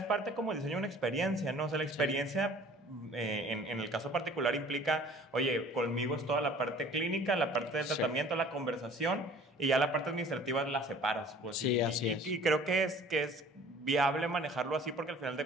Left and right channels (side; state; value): both; normal; correlation 0.50